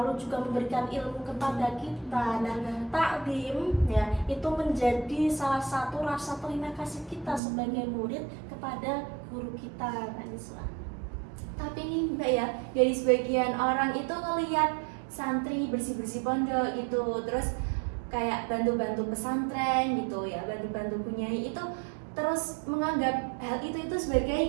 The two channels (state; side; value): drops out; left; at 7.4 s